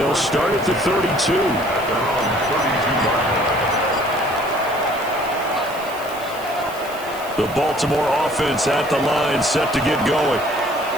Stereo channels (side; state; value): right; noise; hiss, 18 dB below the sound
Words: start at the 32. The Baltimore offense at the line, set to get going.